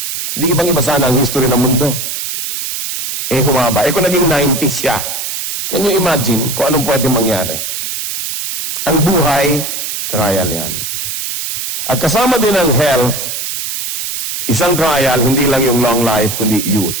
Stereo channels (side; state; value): right; noise; hiss, 4 dB below the sound